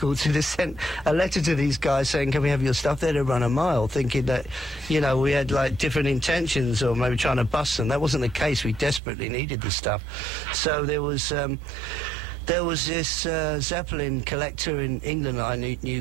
had sent a letter to these guys saying, can we have your stuff? They'd have run a mile, thinking that we had like different intentions, or maybe trying to bust them. That wasn't the case. We desperately needed the stuff. So there was there was this Zeppelin collector in England that I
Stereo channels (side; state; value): left; drops out; at 9.0 s